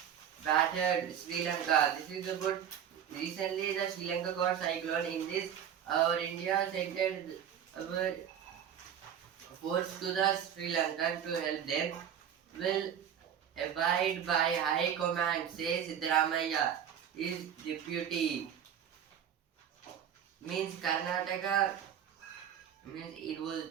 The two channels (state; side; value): quieter; left; 9.0 dB